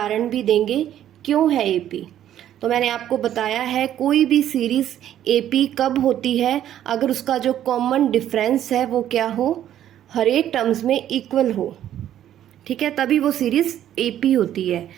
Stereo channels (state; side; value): quieter; left; 11.3 dB